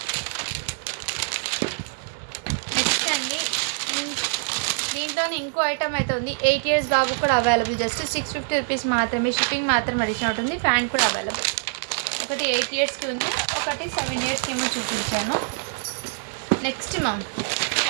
నెక్స్ట్ అండి దీంట్లోనే ఇంకో ఐటమ్ అయితే ఉంది. 8 ఇయర్స్ బాబు కూడా అవైలబుల్. జస్ట్ 650 రూపీస్ మాత్రమే. షిప్పింగ్ మాత్రం అడిషనల్ ఉంటుంది. ప్యాంట్ కూడా అవైలబుల్. ఒకటి 8 ఇయర్స్కి ఉంది, ఒకటి 7 ఇయర్స్కి ఏమో చూపించాను. నెక్స్ట్ మ్యామ్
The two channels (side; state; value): left; silent; digital silence